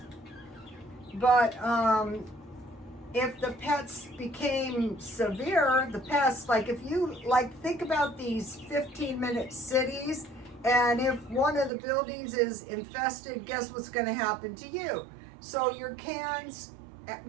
But if the pests became severe, the pests, like if you, think about these 15-minute cities, and if one of the buildings is infested, guess what's going to happen to you? So your cans,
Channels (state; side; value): drops out; left; at 11.7 s